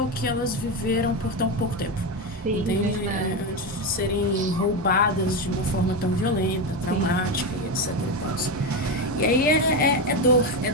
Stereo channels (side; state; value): both; normal; correlation 0.13